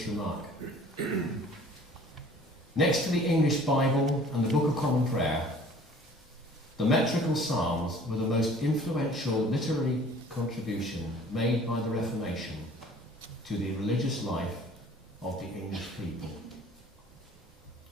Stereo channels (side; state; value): both; normal; correlation 0.50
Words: remark. Next to the English Bible and the Book of Common Prayer, the metrical psalms were the most influential literary contribution made by the Reformation to the religious life of the English people.